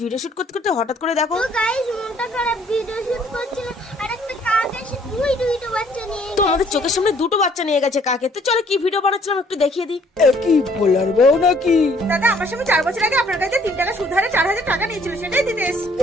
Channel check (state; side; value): normal; both; correlation 0.61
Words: ভিডিও শুট করতে করতে হঠাৎ করে দেখো তো গাইস মনটা খারাপ, ভিডিও শুট করছিল আর একটা কাক এসে দুইটা বাচ্চা নিয়ে তো আমাদের চোখের সামনে দুটো বাচ্চা নিয়ে গেছে কাকে। তো চলো কি ভিডিও বানাচ্ছিলাম একটু দেখিয়ে দিই। কি বলার বউ নাকি? দাদা আমার সঙ্গে 4 বছর আগে আপনার কাছে 3 টাকা সুদ হারে 4000 টাকা নিয়েছিল, সেটাই দিতে এসেছি।